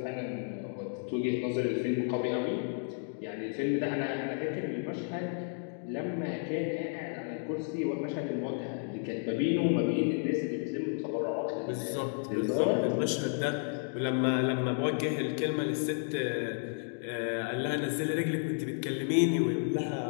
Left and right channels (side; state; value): right; silent; 56 dB below the other